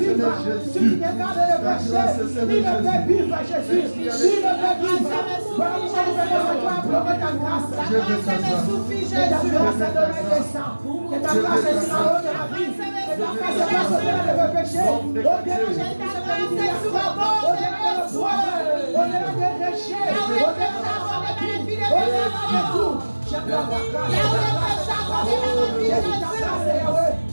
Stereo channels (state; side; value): inverted; both; correlation -1.00